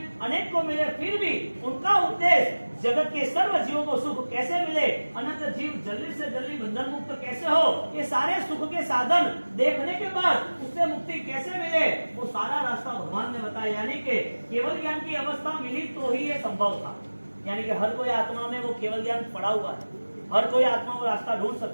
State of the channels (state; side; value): inverted; both; correlation -1.00